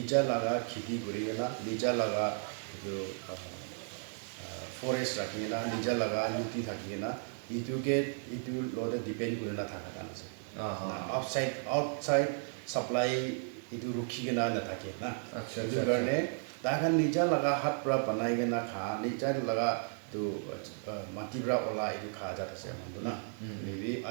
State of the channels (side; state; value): left; silent; 55 dB below the other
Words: লগা খেতি কৰি না নিজা লগা এইটো ফৰেষ্ট ৰাখি না নিজা লগা নদী থাকি না এইটোকে এইটো লগতে ডিপেণ্ড কৰি নাথাকা কাৰণ আছে আউটছাইড ছাপ্লাই এইটো ৰখি কিনে নাথাকে না সেইটো কাৰণে তাহান নিজা লগা হাত পৰা বনাই কিনে খা নিজা লগা তো মাটিৰ পৰা ওলা এইটো খা জাত আছে মানুহটো না